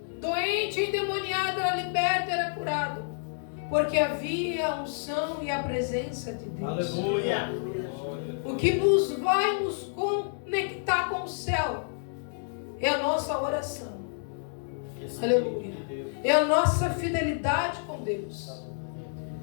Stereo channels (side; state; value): right; silent; digital silence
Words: doente, endemoniado, era liberto, era curado. Porque havia a unção e a presença de Deus. Aleluia. O que nos vai nos conectar com o céu é a nossa oração. Aleluia. É a nossa fidelidade com Deus.